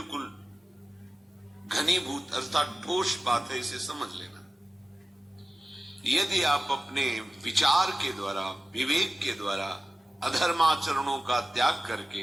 घनीभूत अर्थात ठोस बात है, इसे समझ लेना। यदि आप अपने विचार के द्वारा, विवेक के द्वारा अधर्माचरणों का त्याग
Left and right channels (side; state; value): both; normal; correlation 0.96